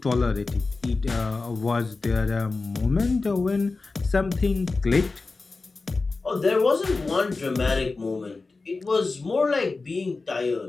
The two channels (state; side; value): quieter; right; 3.8 dB